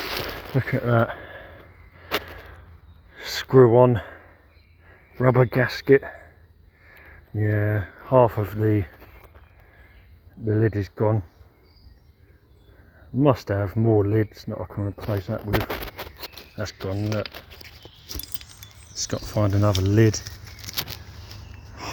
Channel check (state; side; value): identical; both; correlation 1.00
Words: Look at that. Screw on rubber gasket. Yeah, half of the lid is gone. Must have more lids that I can replace that with. That's gone. Look. Just got to find another lid.